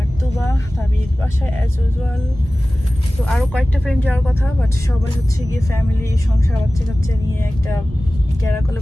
তুবা তাবির বাসায় অ্যাজ ইউজুয়াল। তো আরও কয়েকটা ফ্রেন্ড যাওয়ার কথা, বাট সবাই হচ্ছে গিয়ে ফ্যামিলি, সংসার, বাচ্চা কাচ্চা নিয়ে একটা ক্যারাকলে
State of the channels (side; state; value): both; normal; correlation 0.97